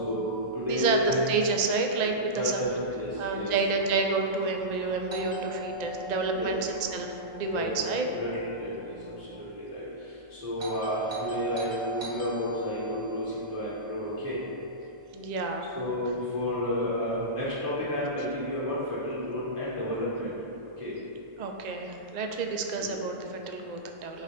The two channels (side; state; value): left; late; 1.9 ms